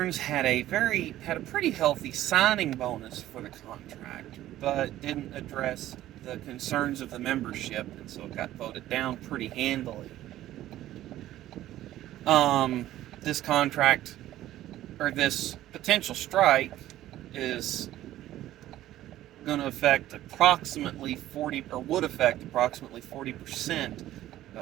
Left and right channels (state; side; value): quieter; left; 13.9 dB